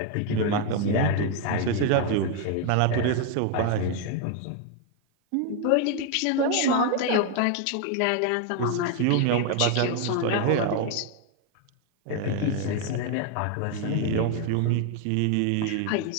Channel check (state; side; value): different; both; correlation 0.01